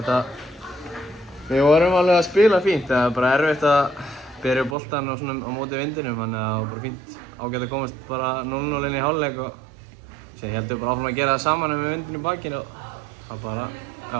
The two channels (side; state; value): left; drops out; at 4.8 s